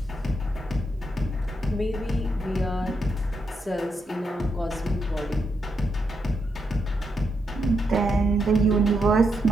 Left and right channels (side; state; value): both; normal; correlation 0.81